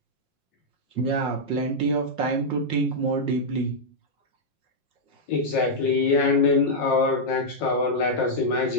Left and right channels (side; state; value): right; late; 5.5 ms